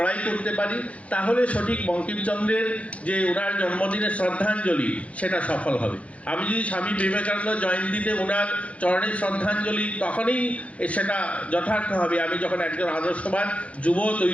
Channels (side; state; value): right; late; 0.064 ms